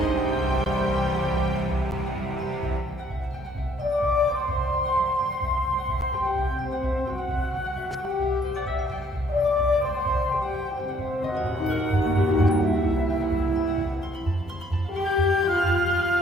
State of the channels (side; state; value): both; normal; correlation 0.64